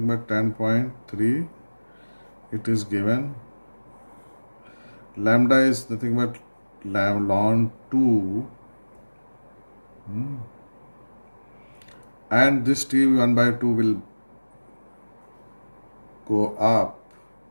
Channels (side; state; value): both; inverted; correlation -1.00